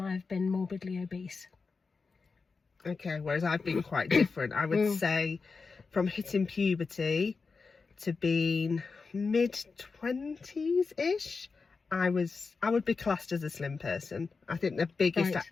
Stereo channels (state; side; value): quieter; right; 4.6 dB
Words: I've been morbidly obese. Okay, whereas I've been quite different. I would say from hitting puberty to being mid-20s-ish, I would be classed as a slim person. I think the biggest I